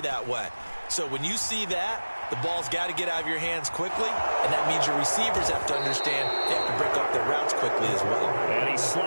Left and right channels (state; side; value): inverted; both; correlation -1.00